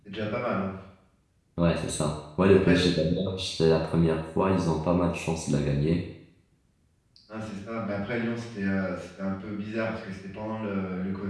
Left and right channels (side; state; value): both; identical; correlation 1.00